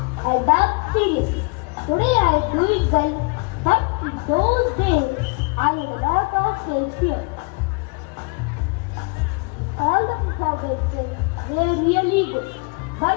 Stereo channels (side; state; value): right; quieter; 32.4 dB